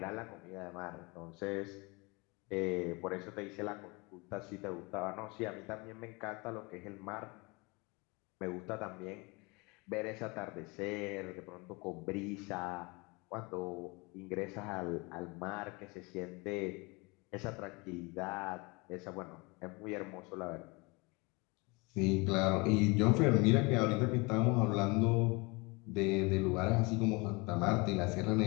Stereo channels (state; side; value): quieter; right; 27.1 dB